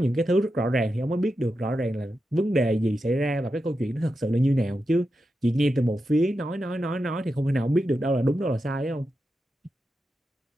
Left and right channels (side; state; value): both; normal; correlation 0.89